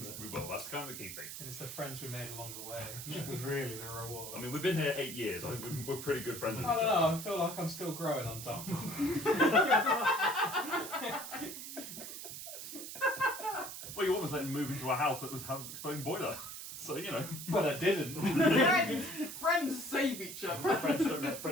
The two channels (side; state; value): right; noise; hiss, 9 dB below the sound